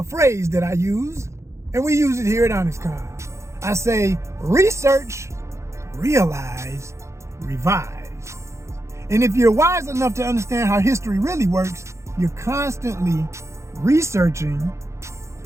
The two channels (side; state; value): left; late; 0.14 ms